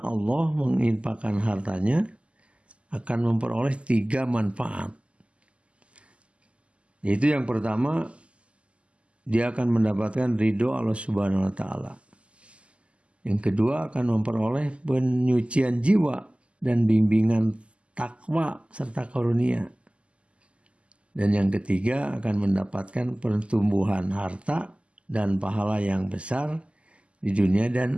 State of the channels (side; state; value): left; late; 0.056 ms